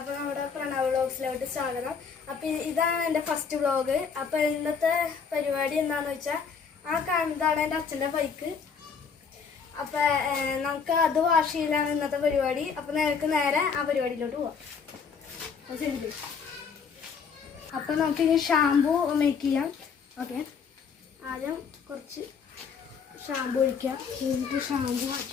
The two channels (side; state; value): right; quieter; 6.0 dB